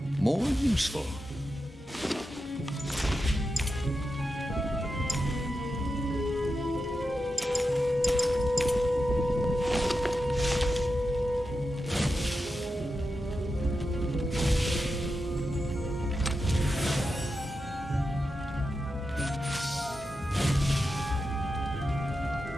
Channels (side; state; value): both; normal; correlation 0.89